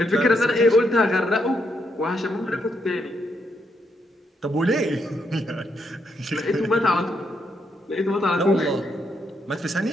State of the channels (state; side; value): normal; both; correlation 0.78